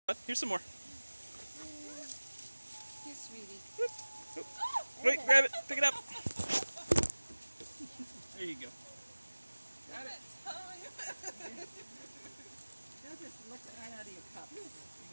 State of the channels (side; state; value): both; inverted; correlation -1.00